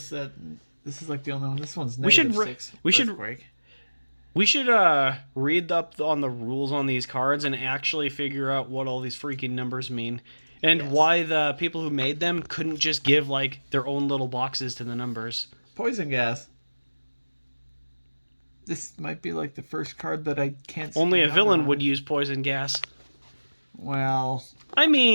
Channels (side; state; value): both; inverted; correlation -1.00